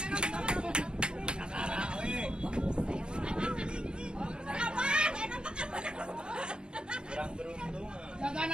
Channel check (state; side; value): late; left; 0.050 ms